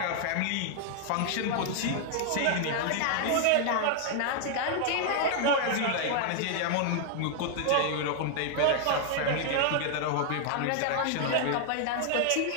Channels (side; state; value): both; different; correlation 0.00